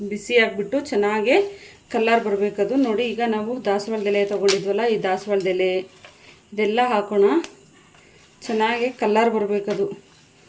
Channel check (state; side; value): identical; both; correlation 1.00